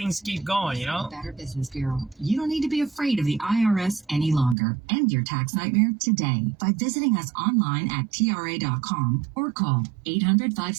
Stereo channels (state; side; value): drops out; left; at 4.5 s